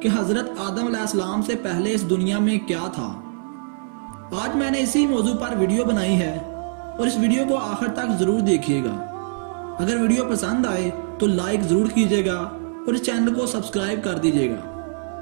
हज़रत आदम अलैहिस्सलाम से पहले इस दुनिया में क्या था। आज मैंने इसी मौजू पर वीडियो बनाई है और इस वीडियो को आखिर तक ज़रूर देखिएगा। अगर वीडियो पसंद आए तो लाइक ज़रूर कीजिएगा और इस चैनल को सब्सक्राइब कर दीजिएगा।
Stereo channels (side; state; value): left; silent; 64 dB below the other